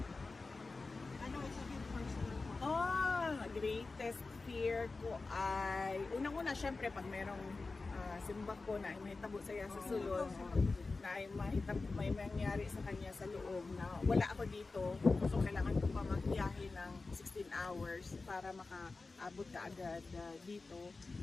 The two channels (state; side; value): quieter; right; 3.7 dB